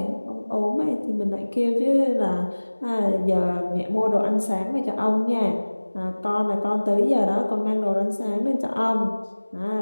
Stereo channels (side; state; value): both; inverted; correlation -1.00